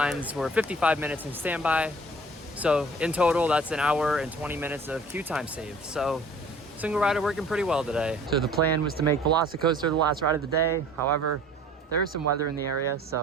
were 55 minutes in standby. So in total, that's an hour and 20 minutes of queue time saved. So Single Rider working pretty well today. So the plan was to make Velocicoaster the last ride of the day. However, there is some weather in the area,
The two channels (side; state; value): both; normal; correlation 0.50